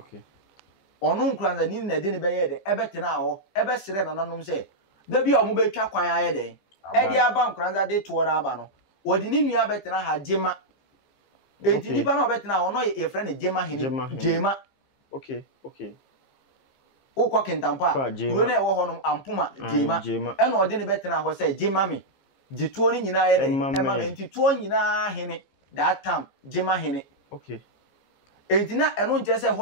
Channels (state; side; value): late; right; 15 ms